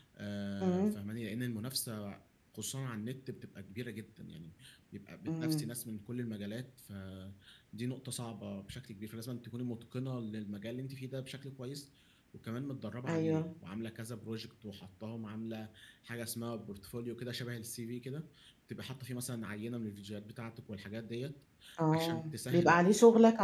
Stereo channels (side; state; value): both; identical; correlation 1.00